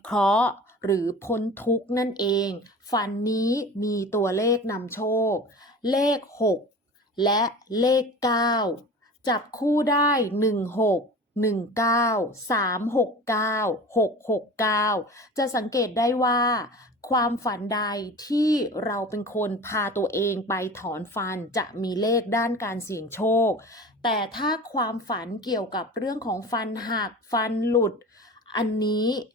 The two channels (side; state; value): both; normal; correlation 0.36